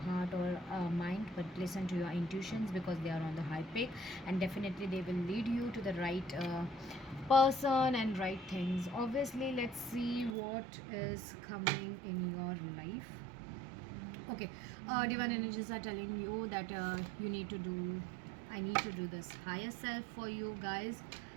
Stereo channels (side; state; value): left; drops out; at 10.3 s